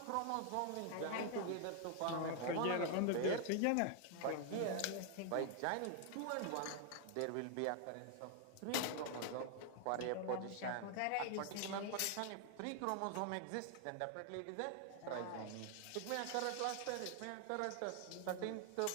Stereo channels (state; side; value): different; both; correlation 0.00